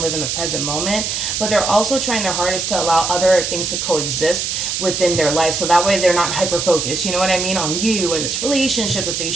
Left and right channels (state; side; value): noise; right; hiss, 2 dB below the sound